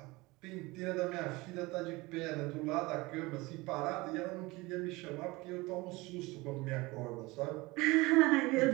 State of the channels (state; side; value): quieter; left; 22.4 dB